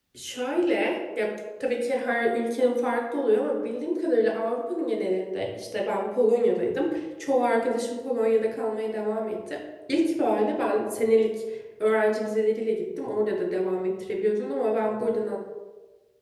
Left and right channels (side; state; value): both; identical; correlation 1.00